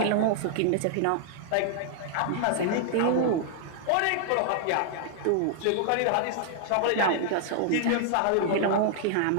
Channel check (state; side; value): different; both; correlation 0.00